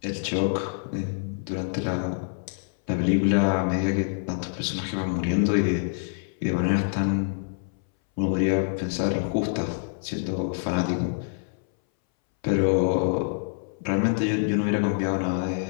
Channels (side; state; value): right; silent; 60 dB below the other